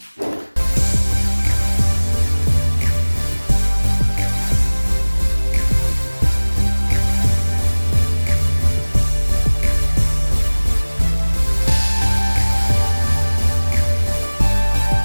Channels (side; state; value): both; inverted; correlation -1.00